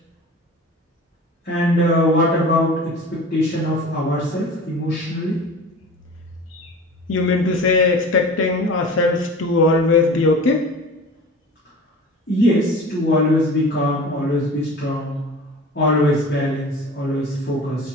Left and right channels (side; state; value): both; normal; correlation 0.38